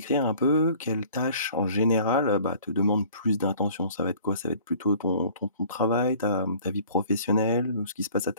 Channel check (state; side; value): inverted; both; correlation -0.50